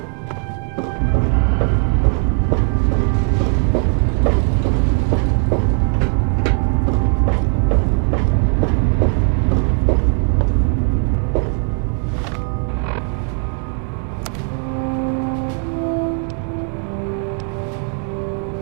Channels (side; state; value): left; quieter; 37.8 dB